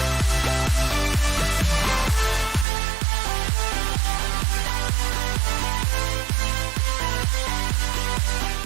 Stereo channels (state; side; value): drops out; left; at 2.7 s